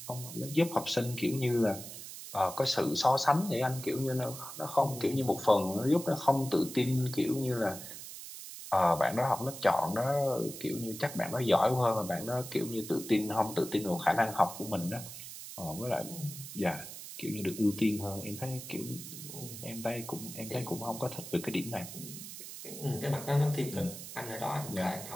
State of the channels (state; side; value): noise; right; hiss, 11 dB below the sound